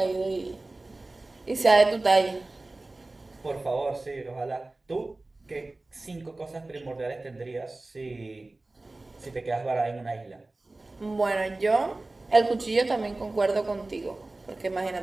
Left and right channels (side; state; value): left; quieter; 3.0 dB